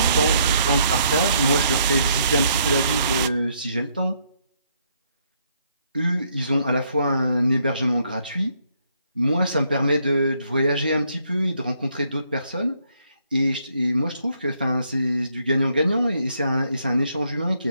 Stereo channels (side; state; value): both; inverted; correlation -0.71